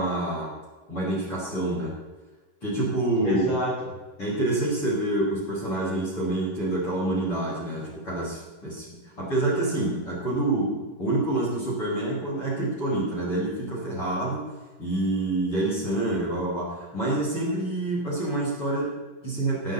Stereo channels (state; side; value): late; right; 11 ms